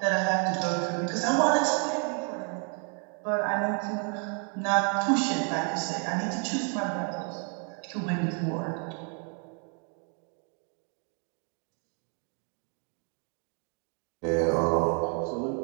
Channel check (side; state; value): left; quieter; 39.2 dB